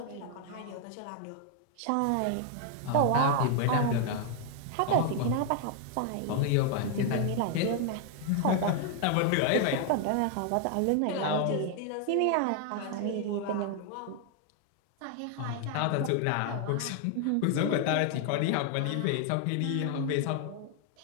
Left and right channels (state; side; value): different; both; correlation 0.00